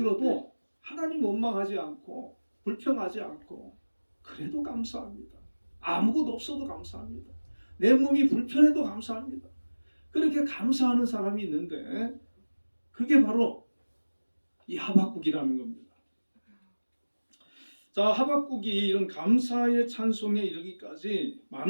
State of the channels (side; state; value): both; inverted; correlation -1.00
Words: 하나님 원망하지 않고 불평하지 않고 그래도 감사합니다. 아무것도 없어도 감사합니다. 내 몸이 불편해도 감사합니다. 그렇게 감사하는 사람이 있는데 그게 바로 이 하박국이라는 겁니다. 자, 하박국이 이런 감사의 찬송에 이르기까지